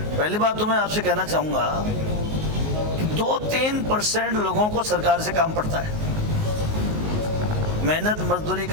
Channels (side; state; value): left; late; 19 ms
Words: पहली बात तो मैं आपसे कहना चाहूँगा, 2-3% लोगों को सरकार से काम पड़ता है। मेहनत मजदूरी